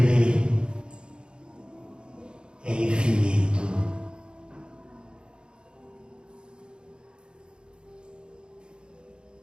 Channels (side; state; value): left; late; 0.051 ms